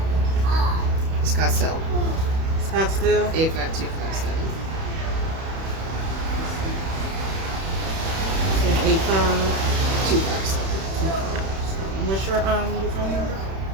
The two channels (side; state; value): left; late; 31 ms